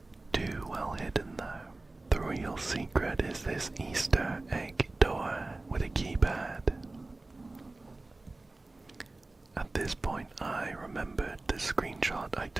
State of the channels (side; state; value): left; quieter; 3.0 dB